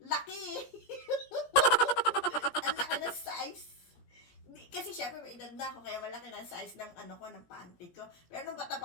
Laki! Ang laki ng size. Kasi syempre may edad na ako, kaya malaki na size ng ng panty ko. Pero nung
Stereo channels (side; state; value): right; late; 17 ms